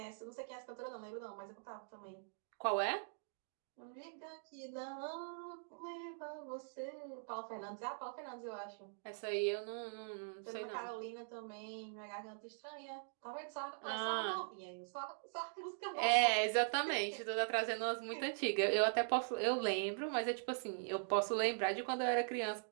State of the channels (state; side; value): silent; left; digital silence